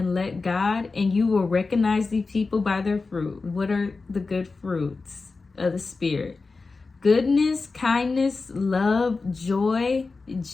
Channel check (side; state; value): right; quieter; 4.0 dB